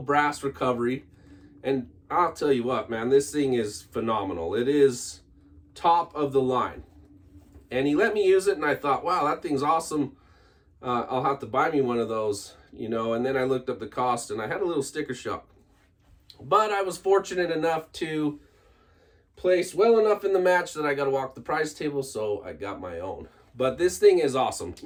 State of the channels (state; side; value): identical; both; correlation 1.00